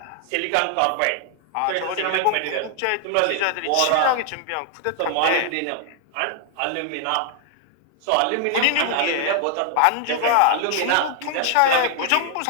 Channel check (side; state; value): both; different; correlation 0.00